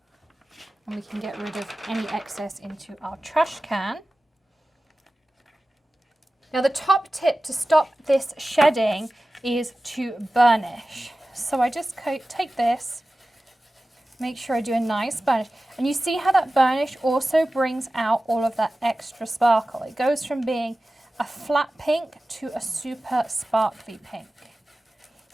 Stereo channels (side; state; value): both; normal; correlation 0.96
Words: And we can get rid of any excess into our trash can. Now the top tip to stop this shedding is to burnish. So I just take this, make sure I do a nice burnish. And you see how that burnish also brings out all of that extra sparkle. It goes from being a flat pink to a super sparkly pink.